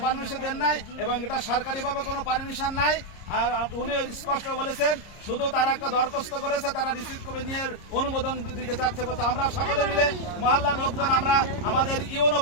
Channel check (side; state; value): right; late; 30 ms